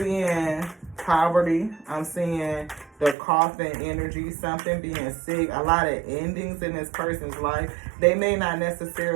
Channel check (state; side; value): drops out; left; at 3.2 s